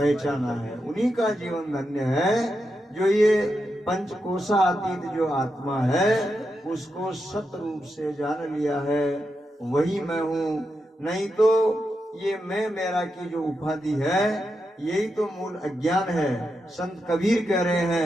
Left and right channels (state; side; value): normal; both; correlation 0.86